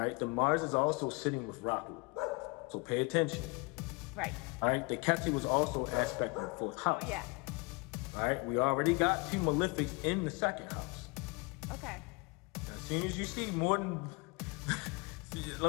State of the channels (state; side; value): quieter; right; 29.1 dB